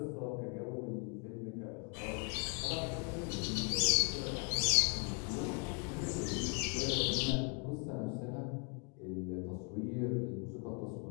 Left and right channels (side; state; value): right; quieter; 37.1 dB